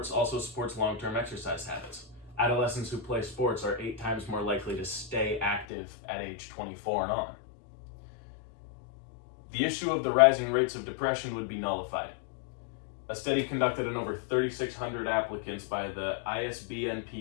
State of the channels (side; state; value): right; drops out; at 5.7 s